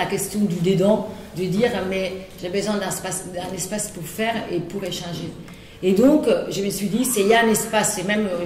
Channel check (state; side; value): identical; both; correlation 1.00